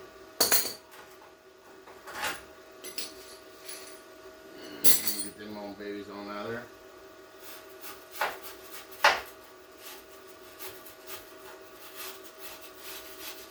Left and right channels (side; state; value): both; identical; correlation 1.00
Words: Get them old babies on out of there.